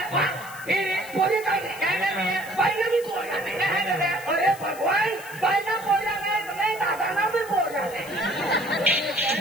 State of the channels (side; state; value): left; noise; hiss, 17 dB below the sound